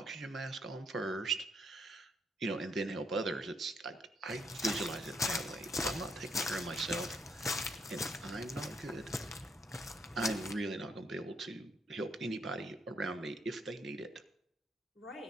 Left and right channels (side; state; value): both; normal; correlation 0.73